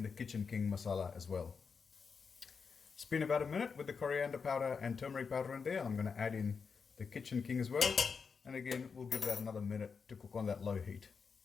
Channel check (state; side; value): quieter; right; 5.6 dB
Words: the kitchen king masala as well. It's been about 1 minute with the coriander powder and turmeric powder in there. I'm going to add in the kitchen king as well. And again, we'll give that another minute to cook on that low heat.